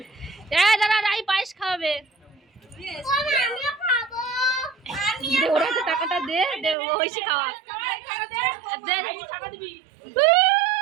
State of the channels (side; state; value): left; drops out; at 6.8 s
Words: দাদা রাই পায়েস খাওয়াবে, ওরা তো টাকাটা দে দে, ওইসি খাওয়া